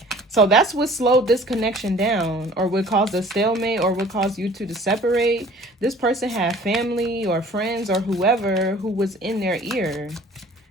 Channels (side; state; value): both; normal; correlation 0.50